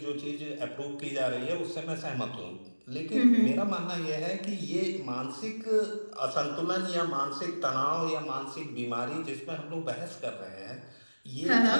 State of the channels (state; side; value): inverted; both; correlation -1.00